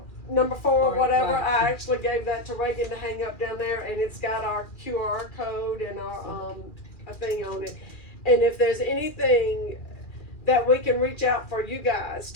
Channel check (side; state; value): right; late; 2.4 ms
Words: number 4 or whatever. Right. I actually gave that to Reagan to hang up down there, and it's got our QR code and our a thing on it. And if there's anything that we can reach out for you guys